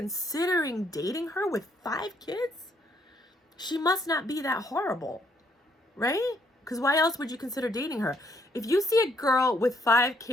dating her with 5 kids, she must not be that horrible, right? Because why else would you consider dating her? If you see a girl with 5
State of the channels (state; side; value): normal; both; correlation 0.70